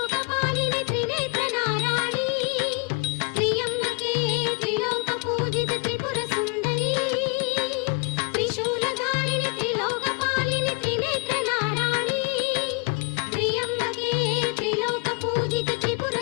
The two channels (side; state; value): right; quieter; 33.8 dB